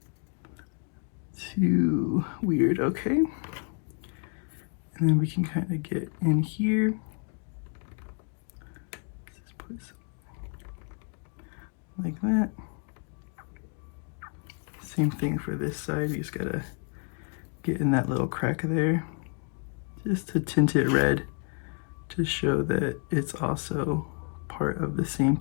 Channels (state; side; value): quieter; right; 39.4 dB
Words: too weird. Okay, and then we can kind of get in here. Let's just put some like that. Same thing for this side. We just gotta get in that little crack there just to tint it red to show that it's also part of the same